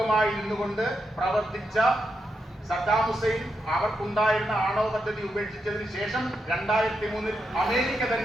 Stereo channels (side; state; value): both; normal; correlation 0.84